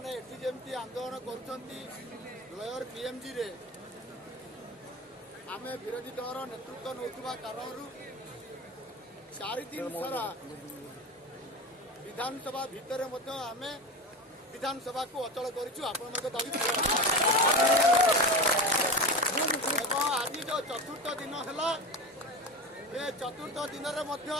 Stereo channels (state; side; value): normal; both; correlation 0.26